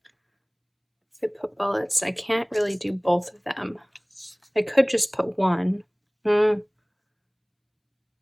If I put bullets, I can't really do both of them. I could just put one. Maybe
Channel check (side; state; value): both; identical; correlation 1.00